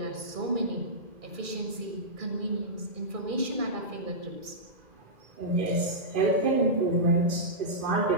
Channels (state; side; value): late; left; 2.4 ms